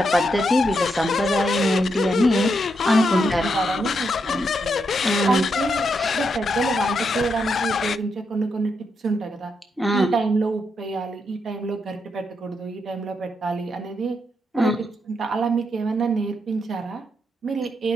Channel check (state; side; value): normal; both; correlation 0.81